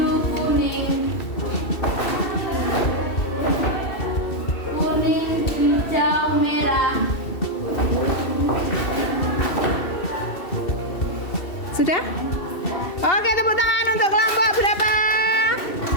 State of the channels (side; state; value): right; late; 2.7 ms